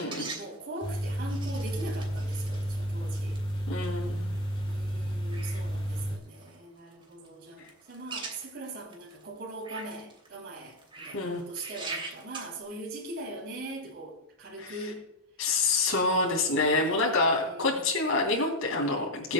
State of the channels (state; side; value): normal; both; correlation 0.15